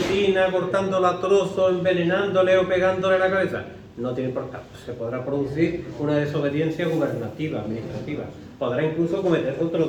cortándola a trozos, envenenándole o pegándole en la cabeza, no tiene importancia. Se podrá producir una desobediencia gubernativa, administrativa. Podrá incluso cometer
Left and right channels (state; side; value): identical; both; correlation 1.00